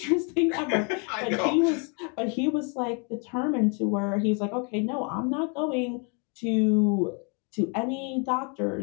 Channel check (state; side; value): quieter; right; 36.2 dB